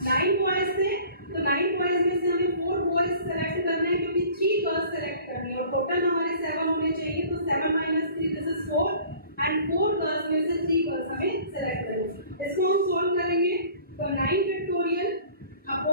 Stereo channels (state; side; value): inverted; both; correlation -0.48